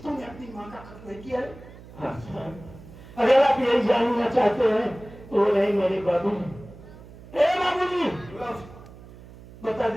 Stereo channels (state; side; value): noise; right; hum, 19 dB below the sound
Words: अपनी माँ का कत्ल नहीं किया? अगर आप यही जानना चाहते हैं तो नहीं मेरे बाबू जी। ए बाबू जी, बता